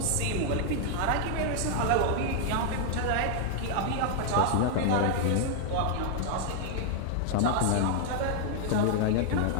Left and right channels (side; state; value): both; different; correlation 0.00